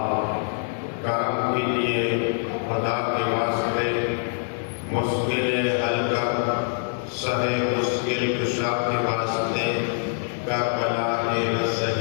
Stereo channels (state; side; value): silent; right; 62 dB below the other